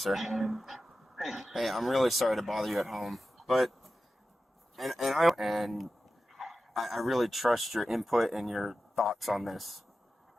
Hey, I'm really sorry to bother you at home, but I really trust your input and your thoughts on this.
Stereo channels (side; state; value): both; normal; correlation 0.93